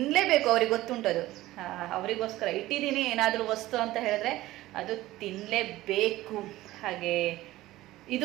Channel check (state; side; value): quieter; left; 16.7 dB